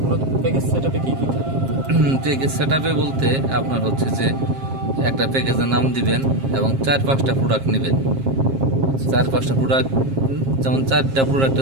প্যাকেজ সেটআপে কি কি থাকে? প্যাকেজ সেটআপে বলতে আপনার হচ্ছে যে একটা প্যাকেজের নাম দিবেন এবং 4-5টা প্রোডাক্ট নেবেন। 4-5টা প্রোডাক্ট, যেমন 4টা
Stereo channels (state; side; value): late; left; 7.5 ms